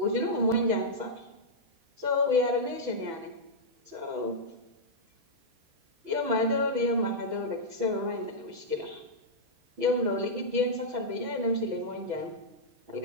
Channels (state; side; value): late; left; 6.1 ms